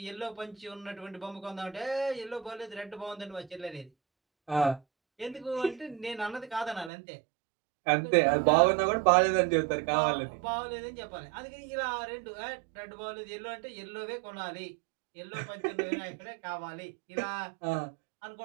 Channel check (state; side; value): drops out; left; at 6.9 s